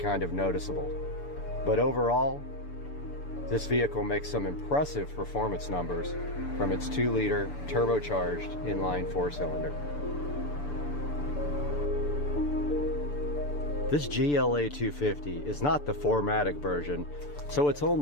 of noticeable. But overall, this vehicle makes some impressive performance numbers from its 2-liter turbocharged inline 4-cylinder. This GLA 250 is not the 4MATIC version, so it's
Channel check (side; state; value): right; late; 6.9 ms